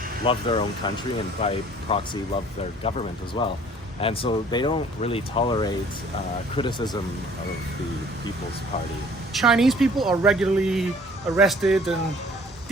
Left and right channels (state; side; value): normal; both; correlation 0.53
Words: love their own country, and by proxy love their government as well. And so they don't really tolerate criticism of the People's Party. Chinese people are regularly arrested and